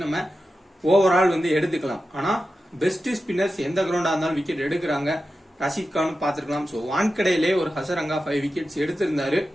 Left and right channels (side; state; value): both; normal; correlation 0.92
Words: நம்ம ஓவரால் வந்து எடுத்துக்கலாம். ஆனா பெஸ்ட் ஸ்பின்னர்ஸ் எந்த கிரவுண்டா இருந்தாலும் விக்கெட் எடுக்கிறாங்க. ரஷீத் கான் பார்த்திருக்கலாம். ஸோ வான்கடையிலே ஒரு ஹசரங்கா 5 விக்கெட்ஸ் எடுத்திருந்தாரு.